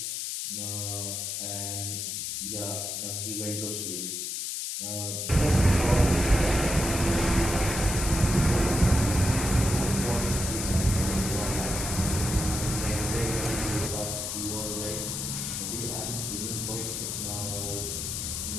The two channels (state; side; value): noise; left; hiss, 3 dB below the sound